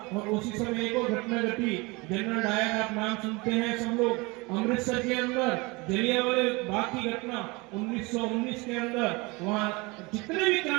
और उसी समय एक और घटना घटी, जनरल डायर आप नाम सुनते हैं सब लोग, अमृतसर के अंदर जलियांवाला बाग की घटना 1919 के अंदर, वहां जितने भी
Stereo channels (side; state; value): left; quieter; 25.7 dB